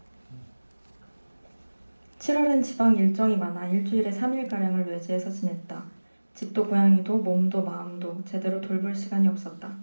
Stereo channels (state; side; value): inverted; both; correlation -1.00